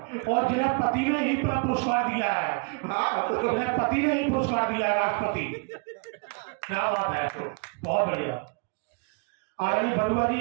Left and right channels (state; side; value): quieter; left; 33.3 dB